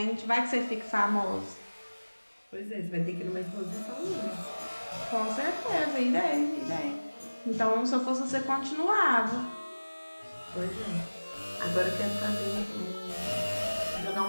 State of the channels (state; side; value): inverted; both; correlation -1.00